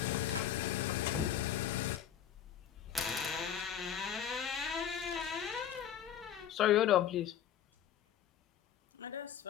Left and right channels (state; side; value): quieter; right; 9.6 dB